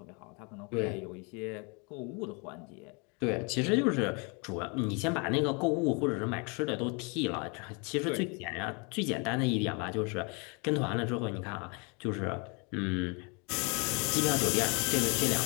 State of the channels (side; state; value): right; quieter; 32.6 dB